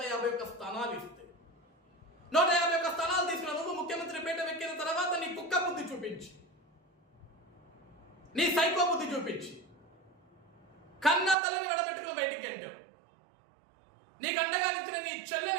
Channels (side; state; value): left; drops out; at 11.4 s